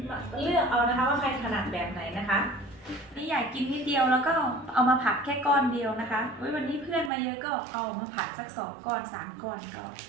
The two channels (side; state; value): left; drops out; at 7.1 s